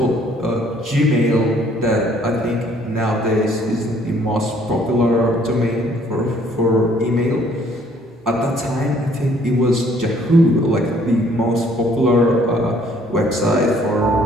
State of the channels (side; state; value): both; normal; correlation 0.61